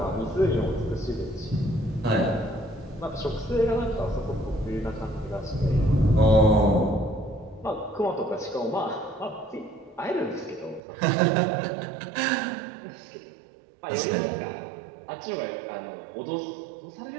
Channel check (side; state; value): left; drops out; at 10.8 s